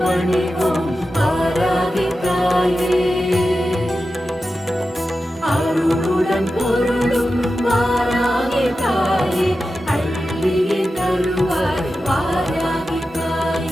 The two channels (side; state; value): both; normal; correlation 0.92